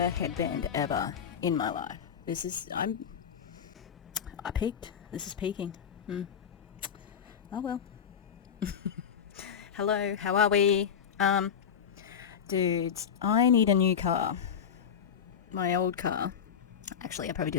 headband ever in my life. This is... I peaked. This is peaking. Oh well. Hello, how are we? Dudes, I need a new car. My old car. Actually, I probably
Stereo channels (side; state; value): right; quieter; 7.8 dB